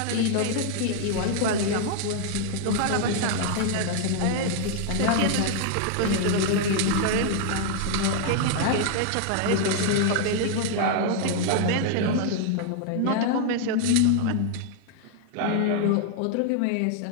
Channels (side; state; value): both; different; correlation 0.00